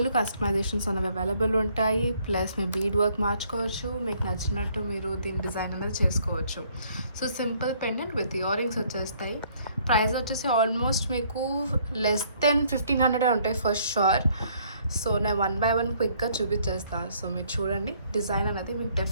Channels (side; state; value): both; inverted; correlation -0.64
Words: కస్టమైజేషన్స్ అనేవి అవైలబుల్ ఉంటాయి. ప్లస్ మీ బీడ్ వర్క్ మార్చుకోవచ్చు, మీకు నచ్చినట్టు మీరు దీని డిజైన్ అనేది చేసుకోవచ్చు. So simple pendant with ear rings వచ్చేస్తాయి. ప్రైస్ వచ్చేసి ఆల్మోస్ట్ మీకు లెస్ దెన్ 1500 ఉంటాయి ఫర్ షూర్. సో నేను 1 by 1 క్విక్గా చూపించేస్తాను. సో మీరు చూడండి, డిజైన్ అనేది మీకు